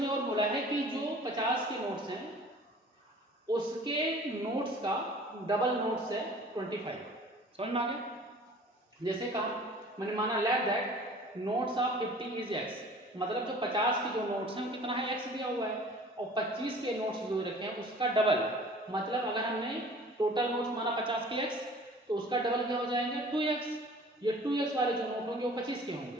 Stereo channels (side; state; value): both; normal; correlation 0.47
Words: और बोला है कि जो 50 के नोट्स हैं उसके नोट्स का डबल नोट्स है 25। समझ में आ गया। जैसे कहा मैंने माना let that notes of 50 is x, मतलब जो 50 के जो नोट्स हैं वो कितना है, एक्स दिया हुआ है। और 25 के नोट्स जो रखे हैं उसका डबल, मतलब अगर हमने टोटल नोट्स माना 50 के एक्स तो उसका डबल क्या हो जाएंगे 2x। ये 2x वाले जो नोट होंगे वो 25 के